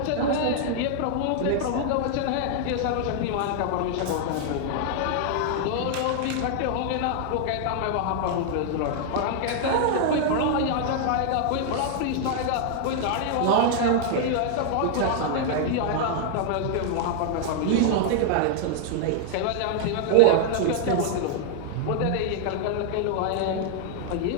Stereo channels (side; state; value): both; different; correlation -0.01